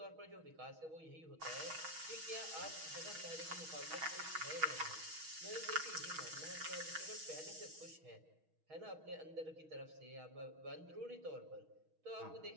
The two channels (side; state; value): left; late; 6.3 ms